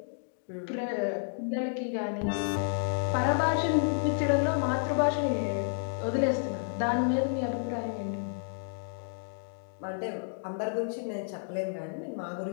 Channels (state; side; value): silent; right; digital silence